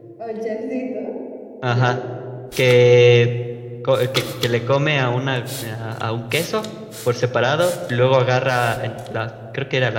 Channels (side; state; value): both; identical; correlation 1.00